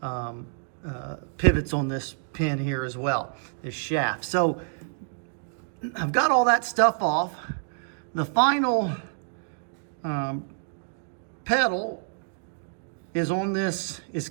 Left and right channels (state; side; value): silent; left; digital silence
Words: pivots on this pin here as well, this shaft. So I've got all that stuff off. The final pedal is on this, is